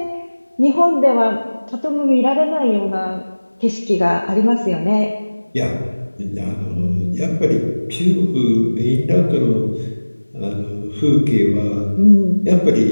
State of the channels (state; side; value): inverted; both; correlation -1.00